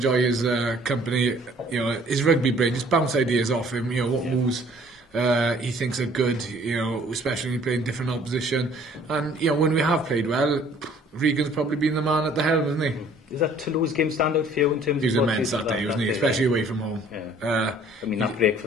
his company. You know, his rugby brain, just bounce ideas off him. You know, what moves he thinks are good. You know, especially when you play in different opposition. And you know, when we have played well, Regan's probably been the man at the helm, isn't he? Is that Toulouse game stand out for you in terms He was of what immense that day, wasn't he? day, Especially away from home. Yeah. I mean, that break for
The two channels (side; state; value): both; normal; correlation 0.56